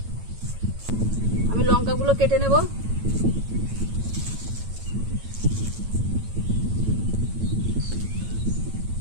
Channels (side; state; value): left; late; 9.1 ms